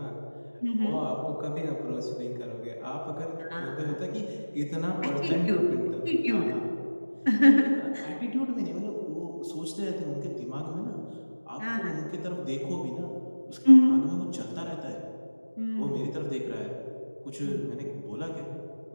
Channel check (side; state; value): both; inverted; correlation -1.00